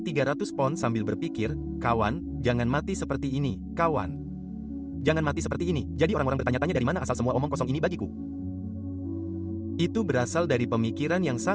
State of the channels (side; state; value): both; identical; correlation 1.00